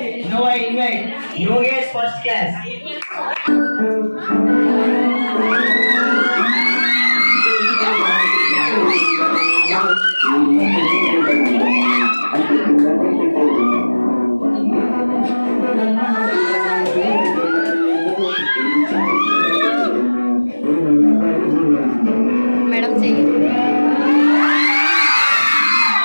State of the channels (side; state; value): both; inverted; correlation -1.00